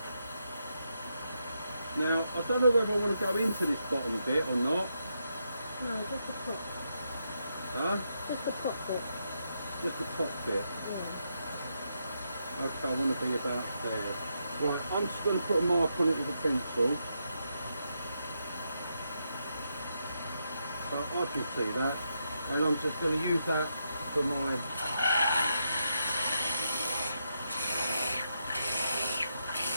Now, I don't know whether I want to go into this bottom bit or not. No, just the top. Huh? Just the top bit. Just the top bit. Yeah. Okay, I want to be about there. Right, I'm just going to put a mark on it with a pencil. So I can see that. And I'm just going to use that for my...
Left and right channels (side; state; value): both; inverted; correlation -0.82